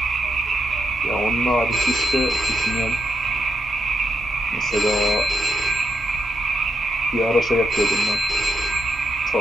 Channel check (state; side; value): normal; both; correlation 0.81